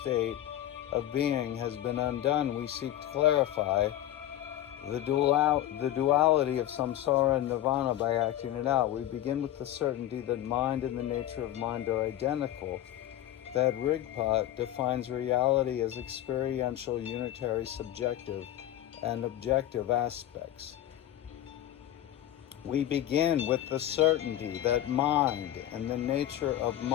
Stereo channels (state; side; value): quieter; right; 12.7 dB